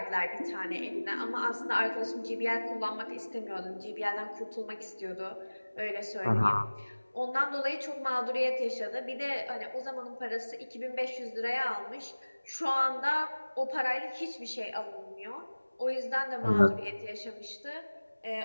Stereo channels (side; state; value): both; inverted; correlation -1.00